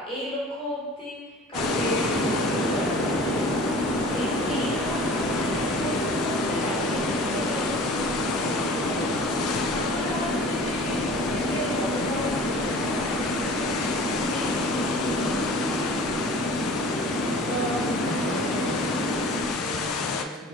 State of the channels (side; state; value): both; normal; correlation 0.43